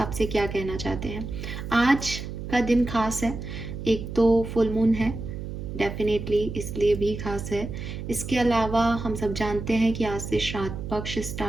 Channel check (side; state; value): right; noise; hum, 7 dB below the sound